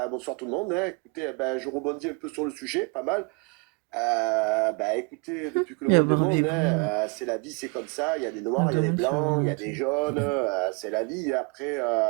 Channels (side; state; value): left; quieter; 32.5 dB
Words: bonsoir tout le monde. Hein. Écoutez, ben, je rebondis un peu sur le sujet, pas mal. Ben, écoutez, depuis que le Il y a monde est monde, Barbie hein, c'est la vie, c'est comme ça. Il y a des noirs, il y a des blancs, il y a des jaunes. C'est la vie. Après,